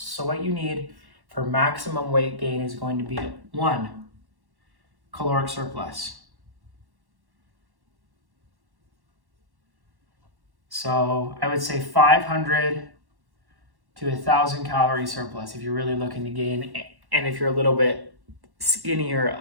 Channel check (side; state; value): left; late; 1.1 ms